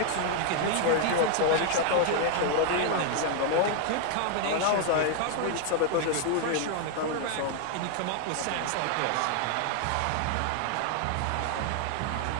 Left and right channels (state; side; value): different; both; correlation 0.00